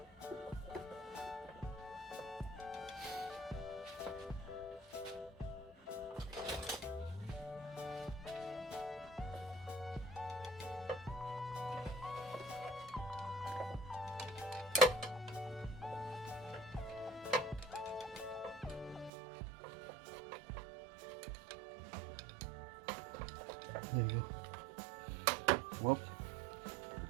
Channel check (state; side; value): drops out; left; at 19.1 s